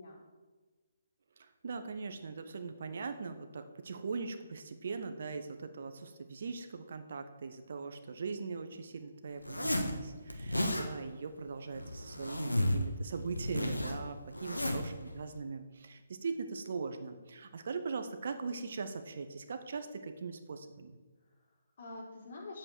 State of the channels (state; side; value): inverted; both; correlation -0.86